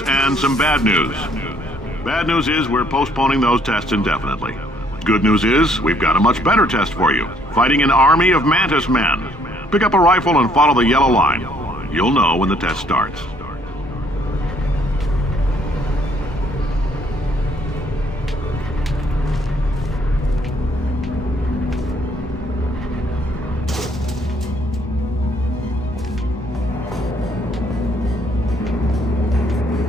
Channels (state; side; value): normal; both; correlation 0.65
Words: and some bad news. Bad news is we're postponing those tests indefinitely. Good news is we've got a much better test for you. Fighting an army of mantis men. Pick up a rifle and follow the yellow line. You'll know when the test starts.